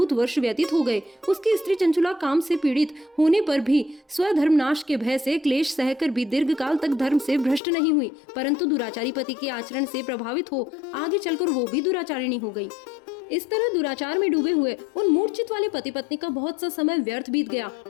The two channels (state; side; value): drops out; right; at 7.6 s